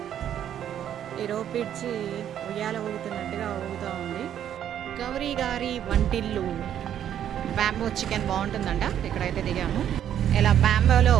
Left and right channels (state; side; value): quieter; left; 10.1 dB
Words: ఈ రోప్ బ్రిడ్జ్ ఉయ్యాల ఊగుతున్నట్టుగా ఊగుతూ ఉంది. గౌరీ గారి వంటిల్లు బ్యాంబో చికెన్ బాగుంటుందంట. ఇక్కడైతే దిగాము. ఇలా బ్యాంబోలో